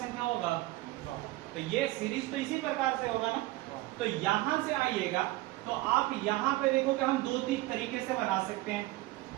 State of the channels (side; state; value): left; quieter; 18.8 dB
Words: होगा तो ये सीरीज तो इसी प्रकार से होगा ना। तो यहां से आइएगा तो आप यहाँ पे देखो कि हम 2-3 तरीके से बना सकते हैं।